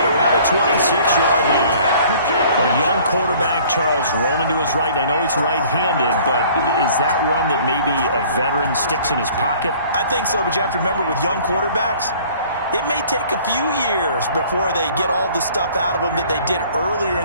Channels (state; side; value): inverted; both; correlation -0.53